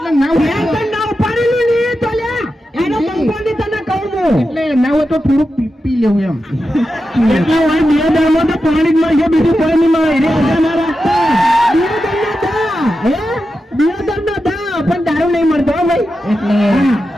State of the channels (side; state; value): both; normal; correlation 0.90